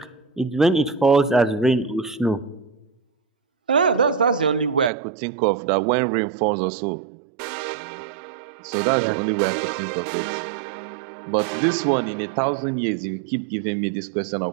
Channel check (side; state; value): left; drops out; at 4.9 s